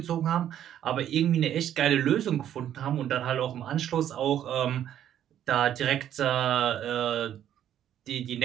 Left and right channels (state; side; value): quieter; left; 10.7 dB